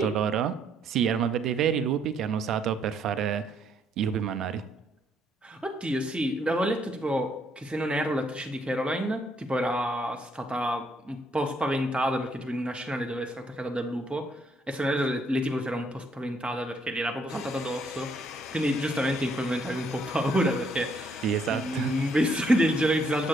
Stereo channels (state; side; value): normal; both; correlation 0.70